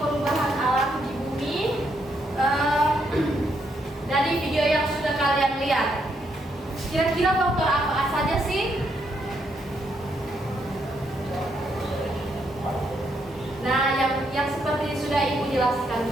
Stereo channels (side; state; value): both; normal; correlation 0.76